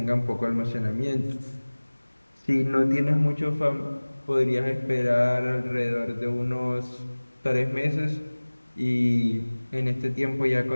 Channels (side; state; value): both; inverted; correlation -1.00